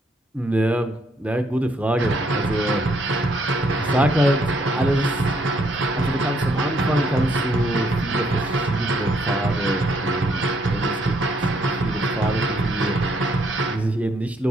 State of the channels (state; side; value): normal; both; correlation 0.70